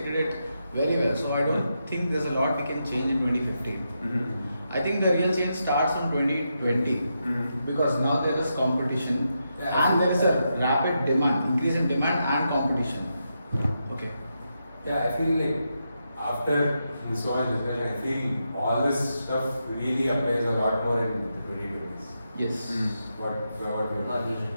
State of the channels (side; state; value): both; inverted; correlation -0.85